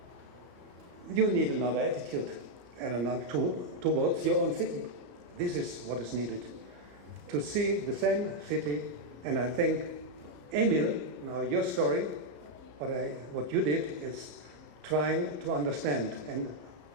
you need another attitude and another towards your own city. This is what is needed. To see the same city, and I think, Emil, now your story, what you did is trying to understand. And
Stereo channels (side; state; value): left; late; 34 ms